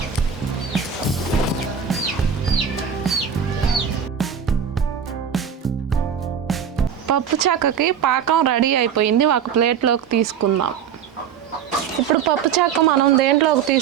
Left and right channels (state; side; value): quieter; left; 7.8 dB